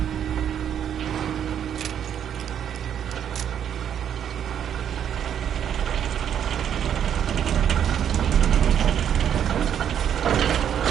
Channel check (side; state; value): left; quieter; 9.2 dB